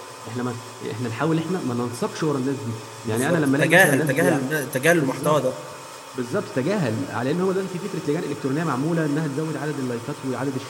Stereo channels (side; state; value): both; identical; correlation 1.00